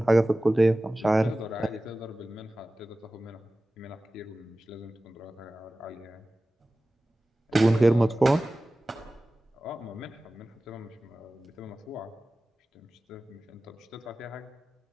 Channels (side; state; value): both; normal; correlation 0.97